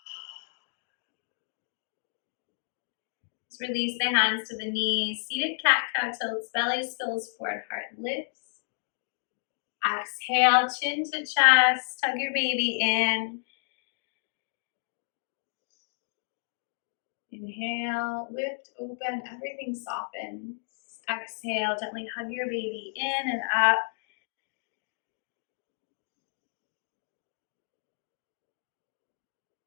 Just release the hands to the knees. Seated cat-cow tilts, belly spills forward, heart lifts. Exhale, chin to chest, tug your baby in. Inhale, lift, open, everything softens. Exhale, gently hug your baby in and up.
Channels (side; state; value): right; silent; digital silence